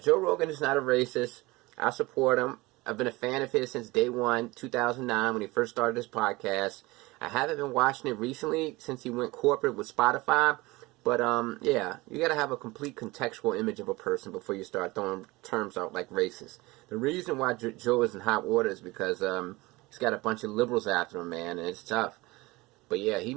Rogan is not a racist. I support him. I've been a fan of his since day one, 2009, when he first started his podcast. I haven't been watching it recently since he went corporate with Spotify. But, yeah, you got to have a complete contextual image of a person before you start throwing terms out like racist. The reason why Joe is in hot water is because he's got a bunch of liberals after him, man, and it's tough. But yeah, he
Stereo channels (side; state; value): left; quieter; 21.8 dB